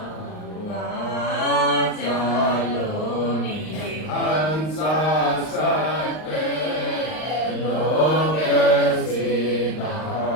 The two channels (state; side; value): late; right; 39 ms